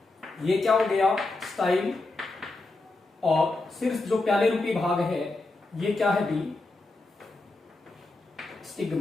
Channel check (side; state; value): right; quieter; 3.1 dB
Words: ये क्या हो गया? स्टाइल। और सिर्फ जो प्याले रूपी भाग है ये क्या है भी?